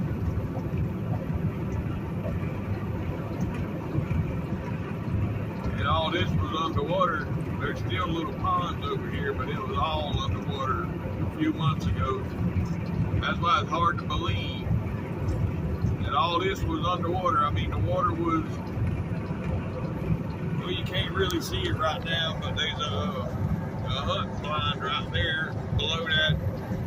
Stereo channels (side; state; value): both; identical; correlation 1.00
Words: And all this was underwater. There's still little ponds over here, but it was all underwater a few months ago. That's why it's hard to believe that all this was underwater. I mean, the water was Well, you can't really see it right now, but there's a hunting blind right there below that